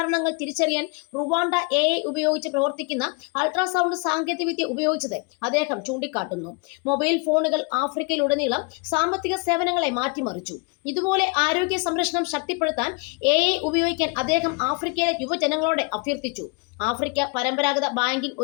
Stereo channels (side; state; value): right; quieter; 30.7 dB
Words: തിരിച്ചറിയാൻ റുവാണ്ട AI ഉപയോഗിച്ച് പ്രവർത്തിക്കുന്ന അൾട്രാസൗണ്ട് സാങ്കേതികവിദ്യ ഉപയോഗിച്ചത് അദ്ദേഹം ചൂണ്ടിക്കാട്ടുന്നു. മൊബൈൽ ഫോണുകൾ ആഫ്രിക്കയിലുടനീളം സാമ്പത്തിക സേവനങ്ങളെ മാറ്റിമറിച്ചു. ഇതുപോലെ ആരോഗ്യ സംരക്ഷണം ശക്തിപ്പെടുത്താൻ AI ഉപയോഗിക്കാൻ അദ്ദേഹം ആഫ്രിക്കയിലെ യുവജനങ്ങളോട് അഭ്യർത്ഥിച്ചു. ആഫ്രിക്ക പരമ്പരാഗത ബാങ്കിംഗ്